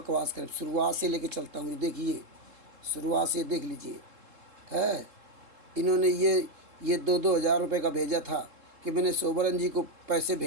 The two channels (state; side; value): late; left; 3.7 ms